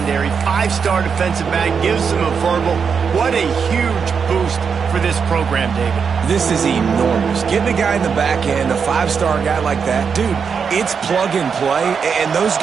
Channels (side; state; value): left; quieter; 6.2 dB